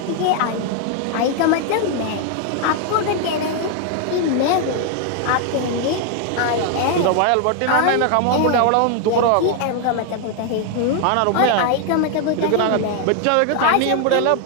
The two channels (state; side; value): different; both; correlation 0.00